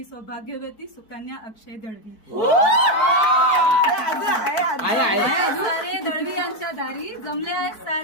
सौभाग्यवती सुकन्या अक्षय दळवी. सारे दळवी यांच्या दारी, जमले आहेत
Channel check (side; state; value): right; late; 4.6 ms